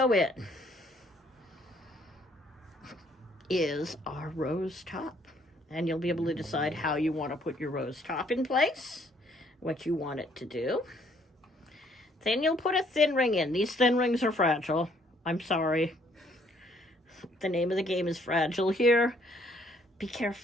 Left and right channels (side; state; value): both; normal; correlation 0.65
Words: in is our rose top. And you'll be able to decide how you want to put your rose top in place, what you want it to do. Then you'll put a thin ring in. These thin rings are fragile. I'm sorry. The name of the game is Fragile here. Be